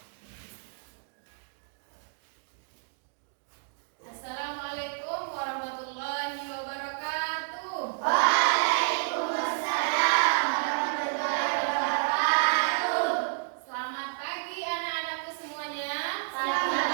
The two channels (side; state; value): left; silent; digital silence